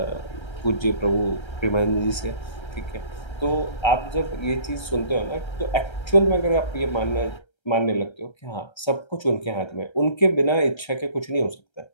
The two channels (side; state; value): right; late; 1.3 ms